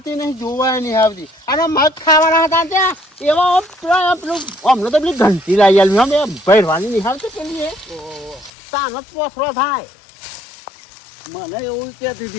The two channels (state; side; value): drops out; right; at 8.5 s